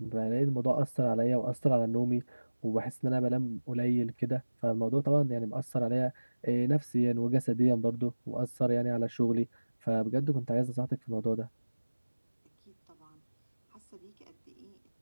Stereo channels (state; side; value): inverted; both; correlation -1.00